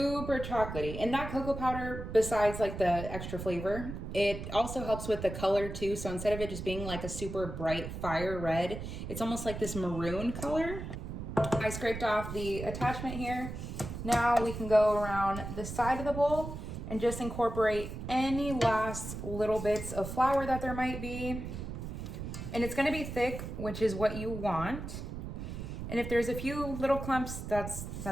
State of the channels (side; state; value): right; noise; rumble, 7 dB below the sound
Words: chocolatey. And that cocoa powder, besides like the extra flavor, it also helps with the color too. So instead of it just being like a super bright fire red, it's almost like this maroon color. I scraped off the attachment here. Now we can go around the side of the bowl and just incorporate any last little bits of flour that there might be. And it's gonna be thick, which is what you want. And if there's a few little clumps, it's